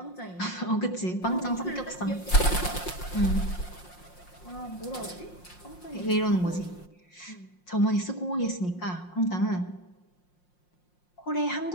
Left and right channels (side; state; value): right; late; 5.6 ms